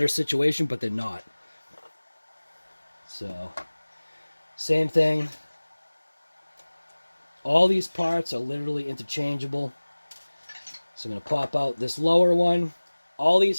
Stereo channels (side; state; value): both; inverted; correlation -1.00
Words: situation, but they're not. So, same thing. All these parts are literally interchangeable. So I'm going to pop out this lower one. All